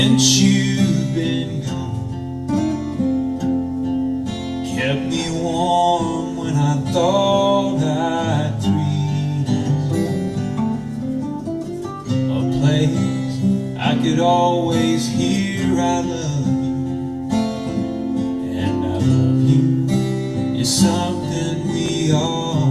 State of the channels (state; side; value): identical; both; correlation 1.00